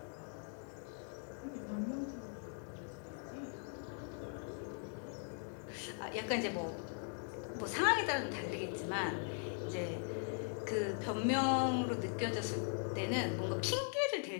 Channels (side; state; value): right; silent; 51 dB below the other